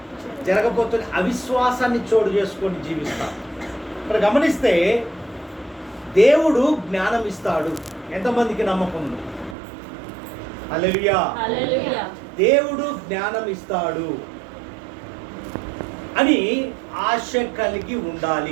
జరగకపోతే అవిశ్వాసాన్ని చోటు చేసుకొని జీవిస్తాం. ఇక్కడ గమనిస్తే దేవుడు జ్ఞానం ఇస్తాడు. ఎంతమందికి నమ్మకం ఉంది? హల్లెలూయా. దేవుడు జ్ఞానం ఇస్తాడు అని ఆశ కలిగి ఉండాలి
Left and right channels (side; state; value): left; drops out; at 9.6 s